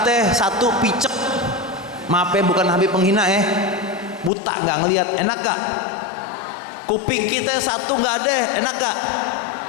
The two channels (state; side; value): drops out; right; at 4.3 s